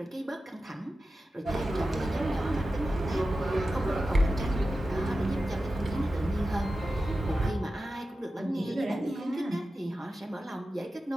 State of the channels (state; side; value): normal; both; correlation 0.93